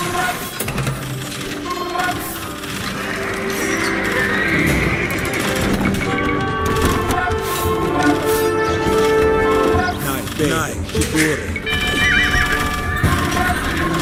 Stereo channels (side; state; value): both; identical; correlation 1.00